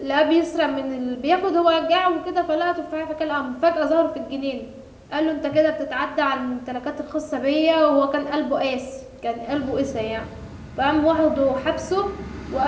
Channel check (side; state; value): both; identical; correlation 1.00